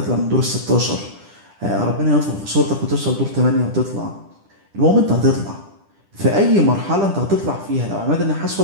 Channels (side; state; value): left; late; 10 ms